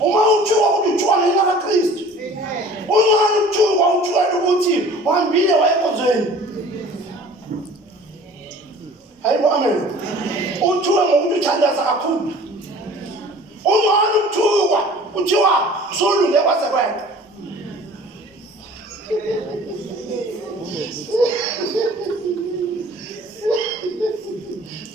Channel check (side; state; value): both; normal; correlation 0.47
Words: uma uthuka ukuthi uthuka ngenxa kaKristu ungani uthuka ukuthi uhambile wayenkonzweni hayibo amen uthuka ngokuthi uthandaza kakhulu ungani uthuka kuthiwa usulunge kwase kwena